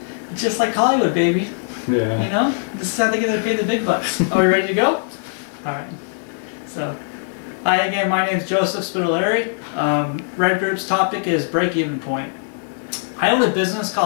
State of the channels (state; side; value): silent; right; 59 dB below the other